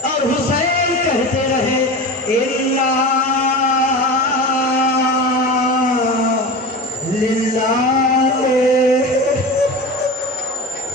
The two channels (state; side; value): normal; both; correlation 0.29